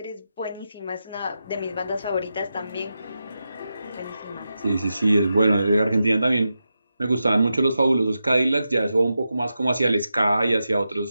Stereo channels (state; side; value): inverted; both; correlation -0.90